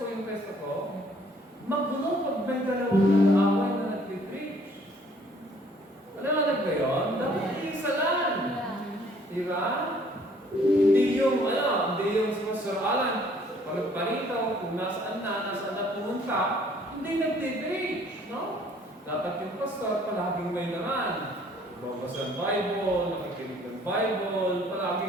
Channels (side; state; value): both; normal; correlation 0.59